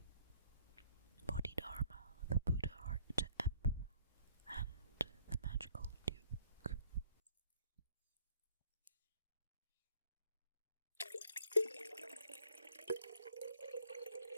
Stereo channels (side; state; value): both; inverted; correlation -0.61